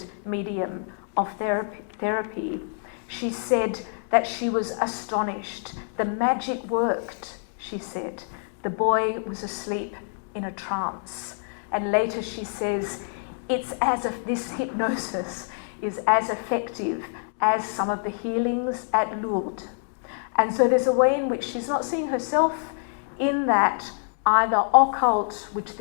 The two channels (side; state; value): right; silent; digital silence